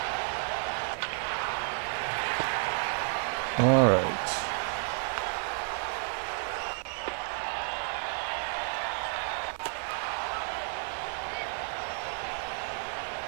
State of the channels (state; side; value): silent; left; 57 dB below the other